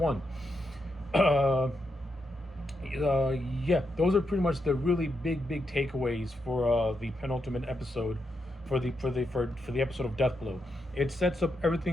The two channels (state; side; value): normal; both; correlation 0.83